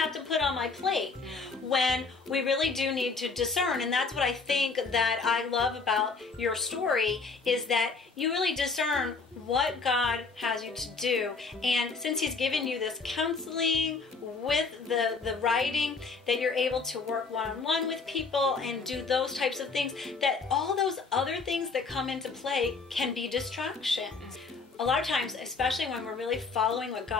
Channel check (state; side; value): quieter; right; 4.4 dB